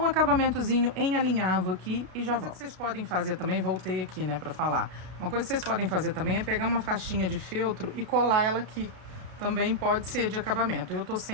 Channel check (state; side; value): late; left; 33 ms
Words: um acabamentozinho em alinhavo aqui e já volto. Uma coisa que vocês podem fazer também, voltei aqui, né, pra falar. Uma coisa que vocês podem fazer também é pegar uma faixinha de feltro e colar ela aqui. Também pode ser de acabamento. Eu tô